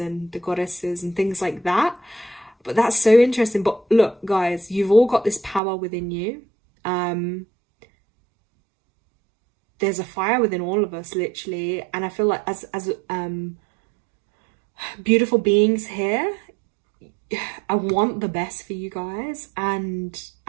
the goddesses and things like that. But that's so interesting. But look, guys, you've all got this power within you. There's a fire within all of us, literally. And I feel like as beautiful beings here, I want the best for you guys, and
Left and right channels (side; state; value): left; drops out; at 5.6 s